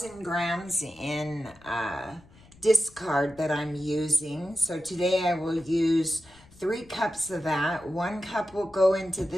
grams in discard that I'm using. So today I will use 3 cups of that. 1 cup will go into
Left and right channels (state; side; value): noise; left; rumble, 25 dB below the sound